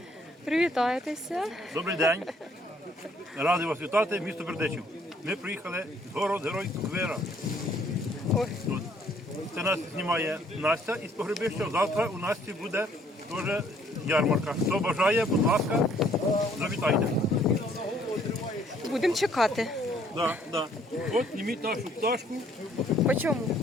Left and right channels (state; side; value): normal; both; correlation 0.63